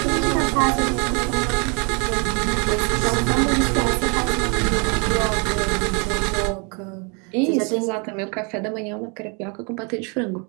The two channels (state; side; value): quieter; left; 34.0 dB